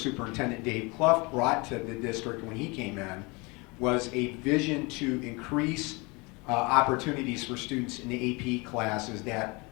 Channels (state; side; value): quieter; right; 27.0 dB